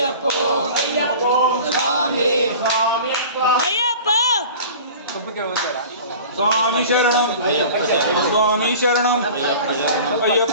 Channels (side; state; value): both; inverted; correlation -0.40